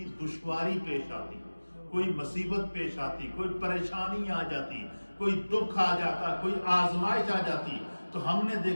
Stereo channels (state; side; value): inverted; both; correlation -1.00